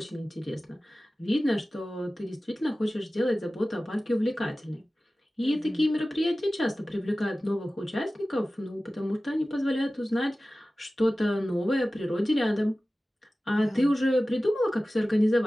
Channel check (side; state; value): both; normal; correlation 0.96